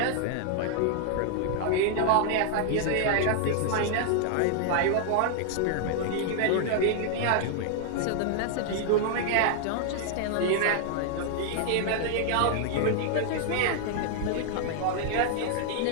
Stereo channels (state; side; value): different; both; correlation 0.00